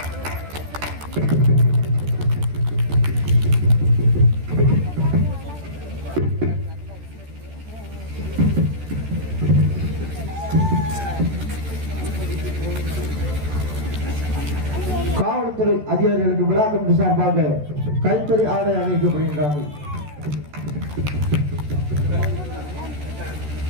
காவல்துறை அதிகாரிகளுக்கு விழா கமிட்டி சார்பாக கைத்தறி ஆடை அணிவிக்கப்படுகின்றார்கள்.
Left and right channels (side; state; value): left; late; 14 ms